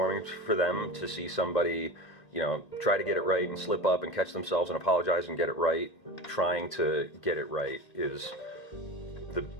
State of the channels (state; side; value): late; right; 1.8 ms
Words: for them to see somebody, try to get it right and slip up and catch themselves and apologize and get it right. Trying to get it right is the